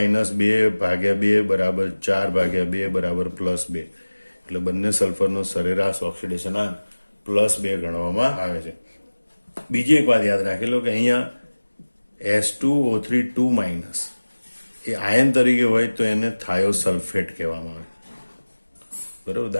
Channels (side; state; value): both; inverted; correlation -1.00